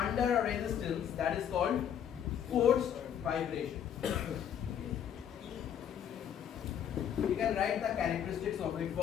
under a resistance, that is called forced vibration. You can write the characteristics of it.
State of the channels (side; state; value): right; quieter; 9.1 dB